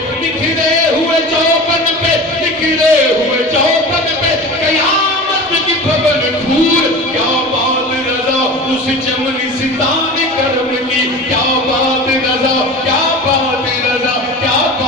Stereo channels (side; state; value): both; normal; correlation 0.34